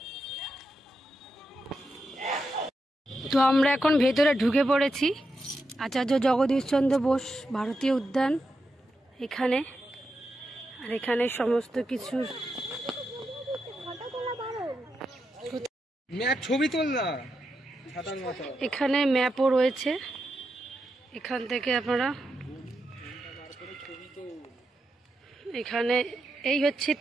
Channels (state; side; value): normal; both; correlation 0.86